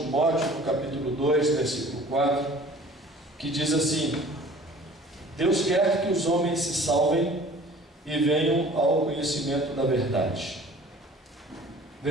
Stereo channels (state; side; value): normal; both; correlation 0.48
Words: no capítulo 2, versículo 4, que diz assim: Deus quer que os homens se salvem e venham ao conhecimento da verdade.